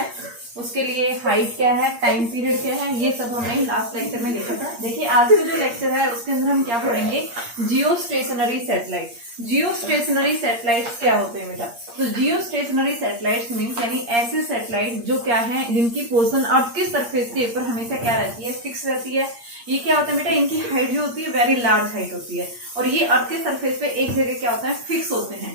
उसके लिए हाइट क्या है, टाइम पीरियड क्या है, ये सब हमने लास्ट लेक्चर में देखा था। देखिए आज का जो लेक्चर है उसके अंदर हम क्या पढ़ेंगे, जियो स्टेशनरी सैटेलाइट। जियो स्टेशनरी सैटेलाइट्स क्या होते हैं बेटा? तो जियो स्टेशनरी सैटेलाइट्स मीन्स यानी ऐसे सैटेलाइट जो क्या है, जिनकी पोजीशन अर्थ के सरफेस के ऊपर हमेशा क्या रहती है, फिक्स रहती है। ये क्या होता है बेटा, इनकी हाइट जो होती है वेरी लार्ज हाइट होती है और ये अर्थ के सरफेस पे एक जगह क्या होता है, फिक्स होते हैं।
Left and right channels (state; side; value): late; left; 8.6 ms